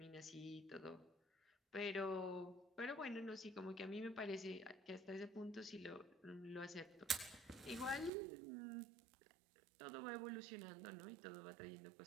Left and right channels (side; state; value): left; drops out; at 8.1 s